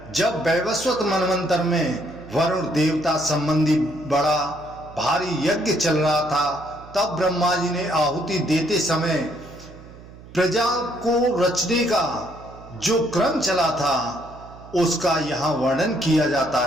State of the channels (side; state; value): right; noise; hum, 19 dB below the sound